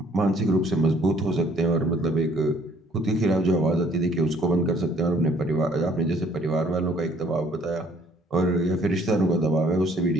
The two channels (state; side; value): normal; both; correlation 0.60